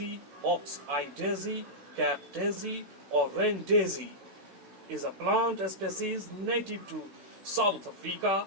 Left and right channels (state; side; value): late; left; 16 ms